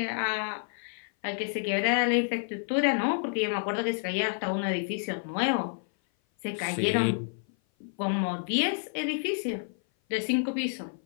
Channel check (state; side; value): silent; right; 56 dB below the other